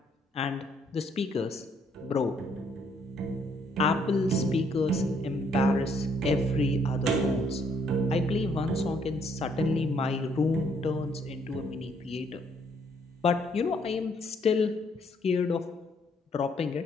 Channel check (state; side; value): normal; both; correlation 0.68